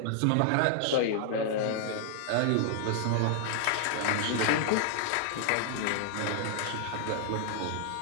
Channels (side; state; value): both; different; correlation 0.00